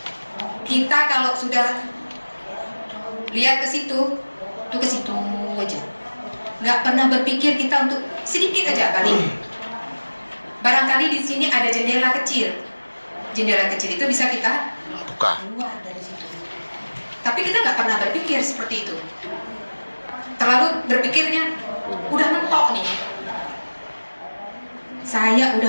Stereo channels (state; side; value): inverted; both; correlation -1.00